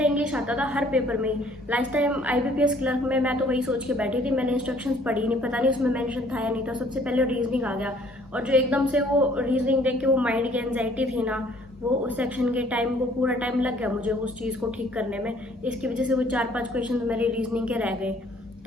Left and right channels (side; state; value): both; normal; correlation 0.59